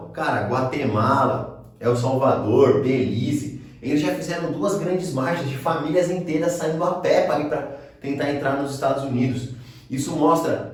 Cara, Guatemala, El Salvador, Belize, eles já fizeram 2 grandes marchas de famílias inteiras saindo a pé para tentar entrar nos Estados Unidos. Isso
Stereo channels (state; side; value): identical; both; correlation 1.00